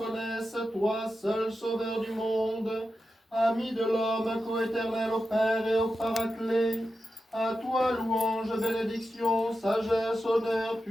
toi seul Sauveur du monde, ami de l'homme, coéternel au Père et au Paraclet. À toi louange, bénédiction, sagesse, honneur,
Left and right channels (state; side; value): normal; both; correlation 0.90